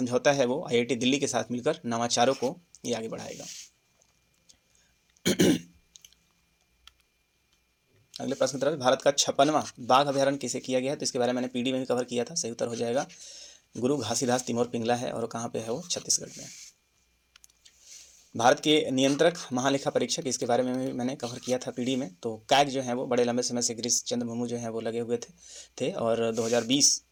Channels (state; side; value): identical; both; correlation 1.00